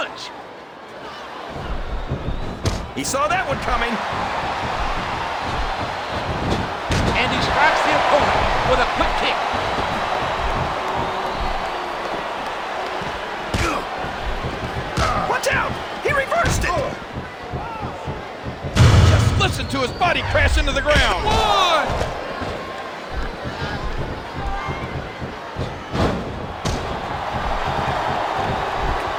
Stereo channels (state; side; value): identical; both; correlation 1.00